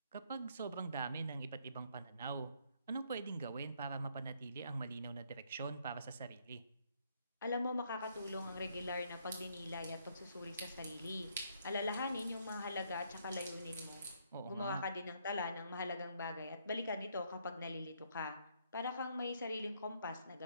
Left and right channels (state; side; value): inverted; both; correlation -0.70